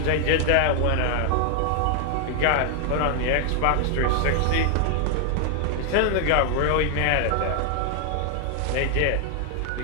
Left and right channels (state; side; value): different; both; correlation 0.00